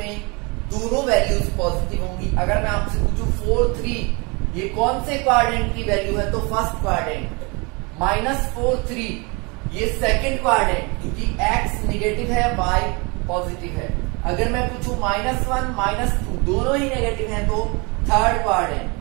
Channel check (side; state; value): left; quieter; 29.1 dB